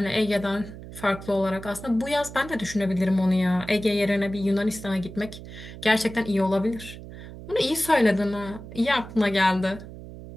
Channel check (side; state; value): right; noise; hum, 14 dB below the sound